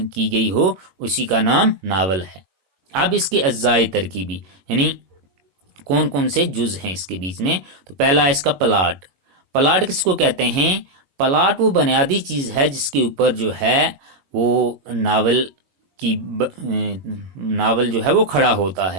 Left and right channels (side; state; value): left; late; 22 ms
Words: کی گئی ہو، اسی کا نام ناول ہے۔ اب اس کے اجزاء ترکیبی، یعنی کون کون سے جز ہیں اس کے بیچ میں، تو پہلا ہے اس کا پلاٹ۔ پلاٹ کس کو کہتے ہیں؟ پلاٹ وہ بنیادی چیز ہے جس کے اوپر جو ہے وہ ناول جو ہے وہ کھڑا ہوتا